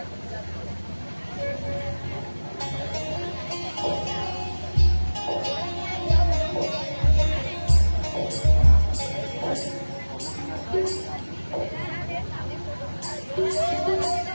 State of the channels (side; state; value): both; inverted; correlation -1.00